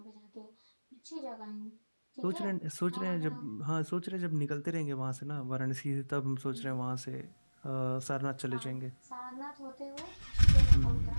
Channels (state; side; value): inverted; both; correlation -1.00